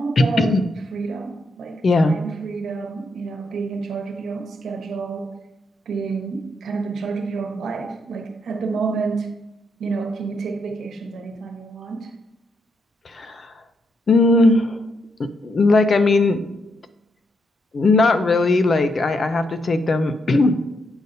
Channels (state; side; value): normal; both; correlation 0.79